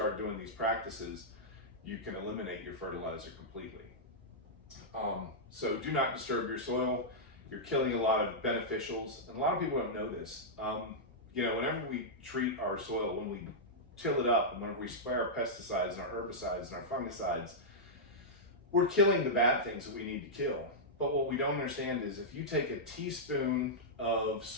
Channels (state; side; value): normal; both; correlation -0.10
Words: doing these practices, you can eliminate your fertilizer completely. So do not disturb your soil. You're killing a lot of beneficials, and a lot of people don't know this. Whenever we treat our soil, when we till it up, and whenever we spray our pesticides and our herbicides and our fungicides, we're killing the bad things that we need to kill. But what we don't understand is if you take a teaspoon of